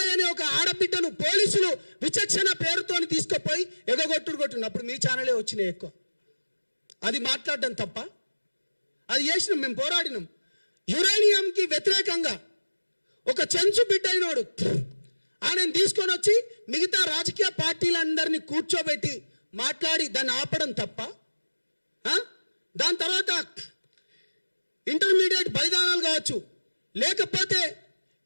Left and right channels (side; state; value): both; inverted; correlation -1.00